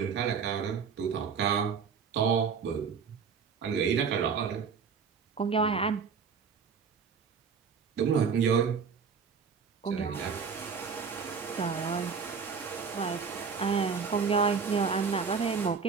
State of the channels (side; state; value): left; quieter; 5.9 dB